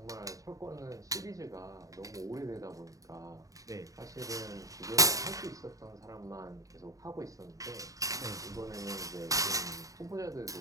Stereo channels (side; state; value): left; late; 0.16 ms